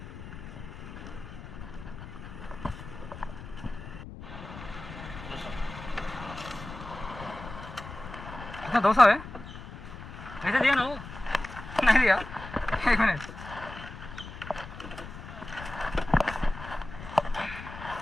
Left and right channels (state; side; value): noise; left; rumble, 12 dB below the sound